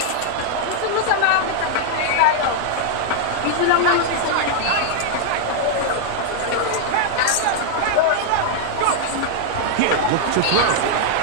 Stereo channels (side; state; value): both; different; correlation 0.00